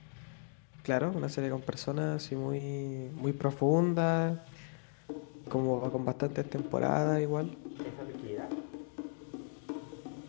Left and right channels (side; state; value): right; silent; 54 dB below the other